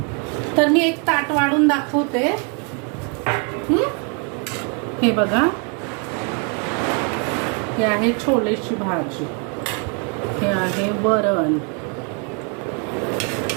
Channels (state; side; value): quieter; left; 37.5 dB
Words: तर मी एक ताट वाढून दाखवते. हे बघा, हे आहे छोलेची भाजी, हे आहे वरण,